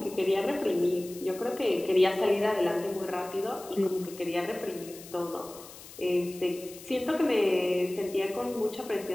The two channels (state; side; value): noise; left; hiss, 17 dB below the sound